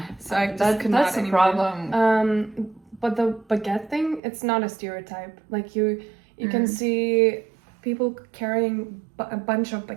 so I just could not that's the anymore. problem. But the baguette thing, it's not a stereotype. Like you can see people carrying a bunch of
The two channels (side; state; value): left; drops out; at 4.2 s